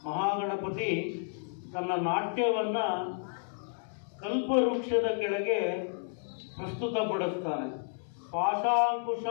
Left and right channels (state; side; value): silent; right; digital silence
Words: ಮಹಾಗಣಪತಿ ತನ್ನ ನಾಟ್ಯವನ್ನ ಕಲ್ಪವೃಕ್ಷದ ಕೆಳಗೆ ಪ್ರಸ್ತುತಪಡಿಸ್ತಾನೆ.